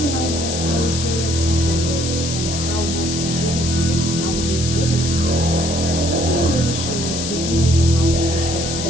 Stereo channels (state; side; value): noise; left; hiss, 5 dB below the sound